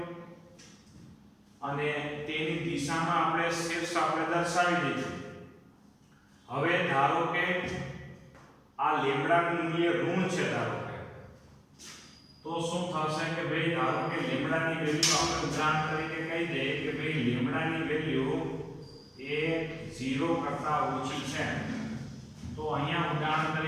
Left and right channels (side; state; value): both; identical; correlation 1.00